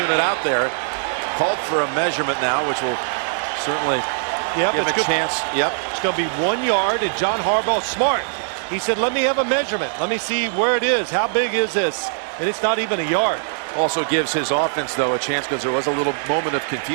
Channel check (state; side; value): silent; left; digital silence